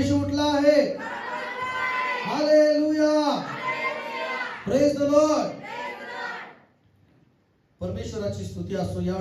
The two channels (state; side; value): identical; both; correlation 1.00